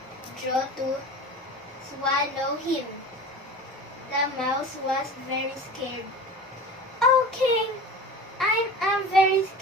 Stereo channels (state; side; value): normal; both; correlation 0.35